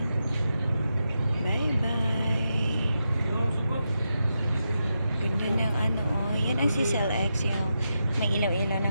Bye-bye. Ganda ng ano oh. Yan ang CCLX yung may ilaw-ilaw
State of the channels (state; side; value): inverted; both; correlation -0.87